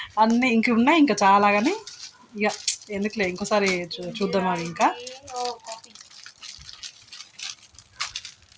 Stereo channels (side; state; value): both; identical; correlation 1.00